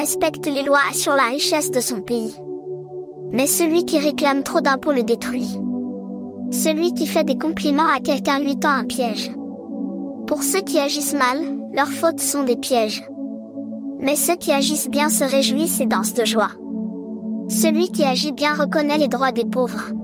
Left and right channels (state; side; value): identical; both; correlation 1.00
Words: les lois assure la richesse de son pays. Mais celui qui réclame trop d'impôts le détruit. Celui qui fait des compliments à quelqu'un lui tend un piège. Pour ceux qui agissent mal, leurs fautes sont des pièges. Mais ceux qui agissent bien se réjouissent et dansent de joie. Celui qui agit bien reconnaît les droits des pauvres.